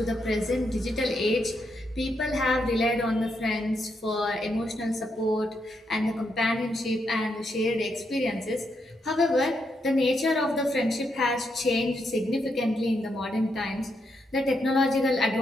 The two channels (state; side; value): normal; both; correlation 0.80